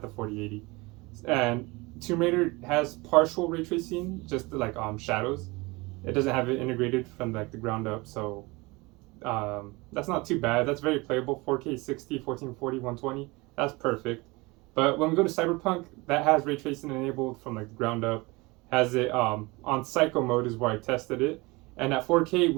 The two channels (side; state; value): left; quieter; 24.1 dB